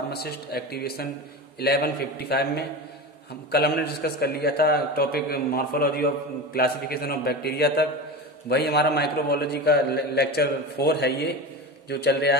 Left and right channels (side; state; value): both; normal; correlation 0.26